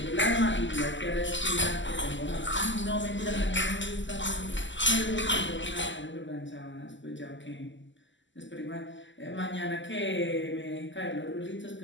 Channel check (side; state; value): right; late; 0.54 ms